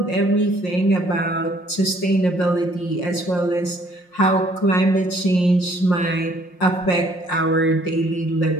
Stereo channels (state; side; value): late; right; 5.6 ms